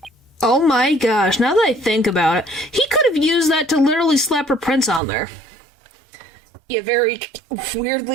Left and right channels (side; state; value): left; drops out; at 5.0 s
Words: Oh my gosh, now that I think about it, he could have used that to literally slap her prints on there. Yeah, very